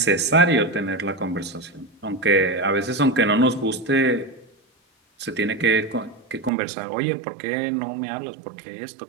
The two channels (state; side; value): drops out; left; at 6.5 s